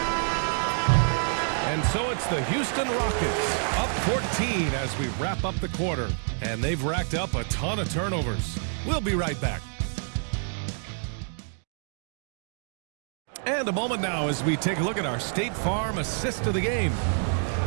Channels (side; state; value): left; silent; 60 dB below the other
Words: And so it's the Houston Rockets up 14 as we wrap up the quarter. And they've racked up a ton of turnovers. We'll be right back. And a moment now as we take a look at our State Farm assist of the game.